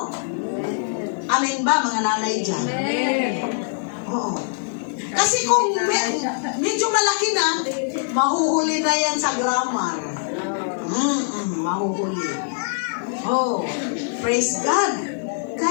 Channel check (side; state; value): right; silent; 64 dB below the other